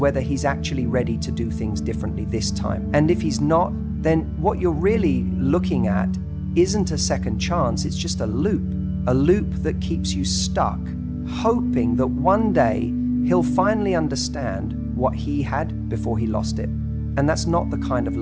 he's actually ready to do things differently this time. And if he's not, then what you're really looking at isn't a second chance, it's just a loop that keeps you stuck, hoping that one day he'll finally understand what he had before he lost it. And that's not the kind of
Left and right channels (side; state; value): both; identical; correlation 1.00